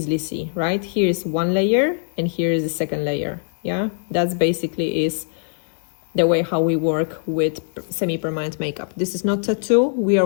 see, right? Here is one layer and here is the second layer. Yeah, that's basically is the way how we work with semi-permanent makeup. This is not tattoo, we are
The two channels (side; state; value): right; silent; digital silence